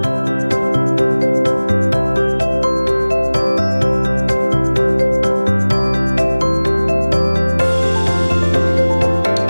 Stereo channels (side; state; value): both; inverted; correlation -1.00